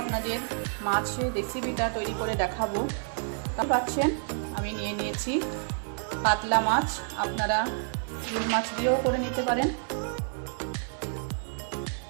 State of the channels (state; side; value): silent; left; 58 dB below the other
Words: আপনাদের মাছের রেসিপিটা তৈরি করে দেখাবো। তা পাচ্ছেন আমি নিয়ে নিয়েছি কাতলা মাছ, আপনারা রুই মাছ দিয়েও করে নিতে পারেন।